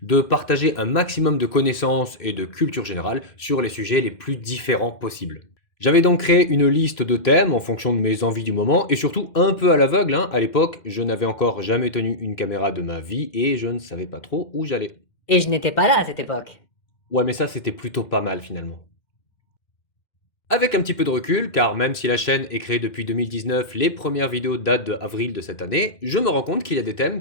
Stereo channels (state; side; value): late; right; 2.1 ms